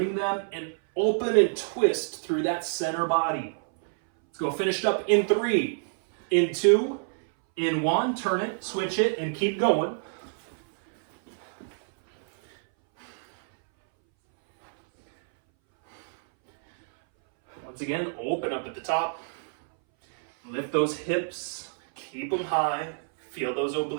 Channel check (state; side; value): silent; left; 60 dB below the other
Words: them and open and twist through that center body. Let's go finished up in 3, in 2, in 1. Turn it, switch it, and keep going. Once again, open up at the top. Lift those hips, keep them high. Feel those